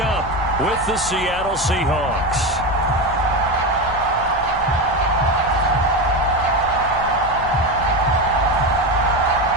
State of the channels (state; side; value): noise; left; rumble, 15 dB below the sound